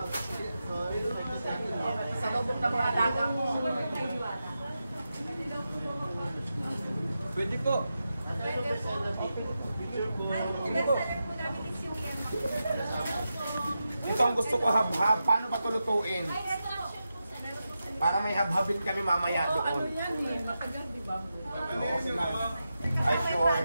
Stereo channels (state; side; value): inverted; both; correlation -0.89